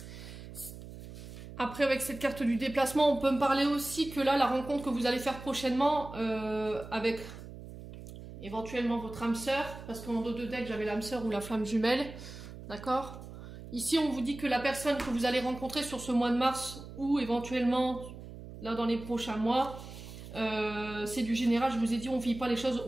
Après, avec cette carte du déplacement, on peut me parler aussi que là, la rencontre que vous allez faire prochainement avec éventuellement votre âme sœur, parce qu'en dos de deck, j'avais l'âme sœur ou la flamme jumelle, d'accord? Ici, on vous dit que la personne que vous allez rencontrer sur ce mois de mars ou éventuellement là dans les prochains mois, c'est du général, je vous ai dit, on ne vit pas les choses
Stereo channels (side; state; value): right; noise; hum, 13 dB below the sound